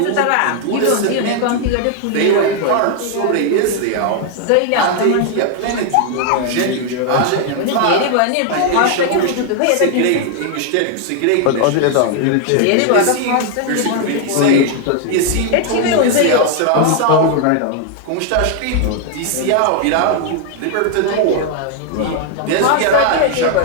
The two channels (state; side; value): different; both; correlation 0.00